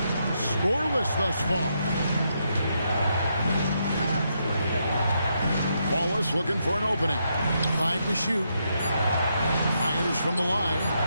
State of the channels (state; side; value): inverted; both; correlation -0.80